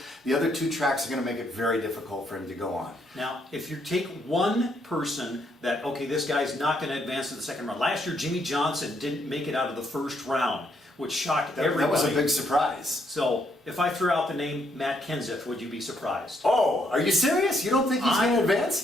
The other two tracks are going to make it very difficult for him to go on. Now, if you take one person that, okay, this guy's not going to advance to the second round. Last year, Jimmy Johnson didn't make it out of the first round, which shocked everybody. That was a big surprise. So, if I threw out the name Matt Kenseth, would you be surprised? Oh, are you serious? You don't think he's going to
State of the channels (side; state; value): both; normal; correlation 0.73